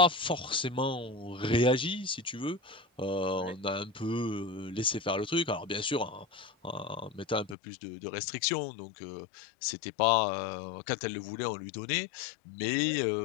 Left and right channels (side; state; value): right; drops out; at 7.6 s